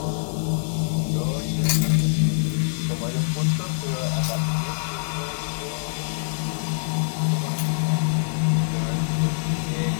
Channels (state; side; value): silent; right; 62 dB below the other